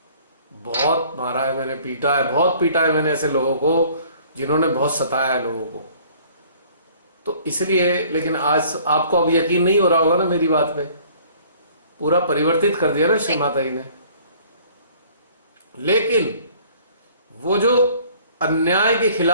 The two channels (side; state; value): both; inverted; correlation -0.54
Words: बहुत मारा है मैंने, पीटा है, बहुत पीटा है मैंने ऐसे लोगों को जिन्होंने बहुत सताया है लोगों को। तो इसलिए, लेकिन आज आपको अब यकीन नहीं हो रहा होगा ना मेरी बात पे। पूरा परिवर्तित कर दिया ना श्री माता जी ने। लेकिन वो जो अन्याय के